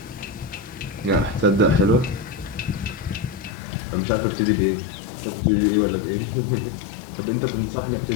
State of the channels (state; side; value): drops out; right; at 3.6 s